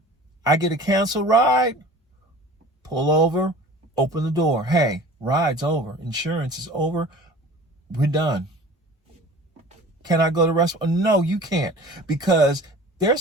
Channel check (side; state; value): both; normal; correlation 0.42